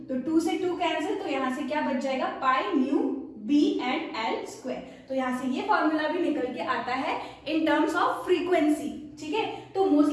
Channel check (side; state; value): both; identical; correlation 1.00